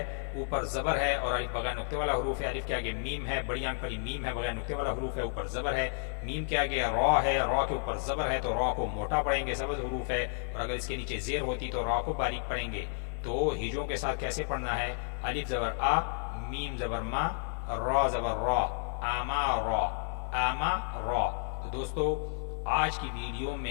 اوپر زبر ہے اور الف بغیر نقطے والا حروف ہے، الف کے آگے میم ہے، بڑی آنکھ والی میم ہے، بغیر نقطے والا حروف ہے، اوپر زبر ہے، میم کے آگے را ہے، را کے اوپر زبر ہے تو را کو موٹا پڑھیں گے، سبز حروف ہے، اور اگر اس کے نیچے زیر ہوتی تو را کو باریک پڑھیں گے۔ تو ہجوں کے ساتھ کیسے پڑھنا ہے؟ الف زبر آ، میم زبر ما، را زبر را، آما را، آما را۔ تو دوستو آج کی ویڈیو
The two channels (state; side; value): silent; right; 57 dB below the other